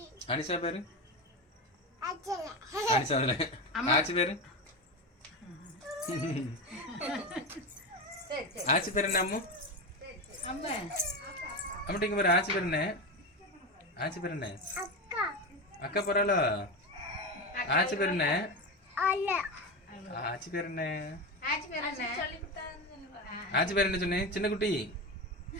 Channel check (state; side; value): normal; both; correlation 0.18